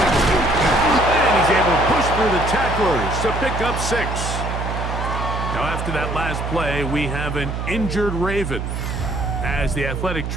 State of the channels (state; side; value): noise; right; hum, 4 dB below the sound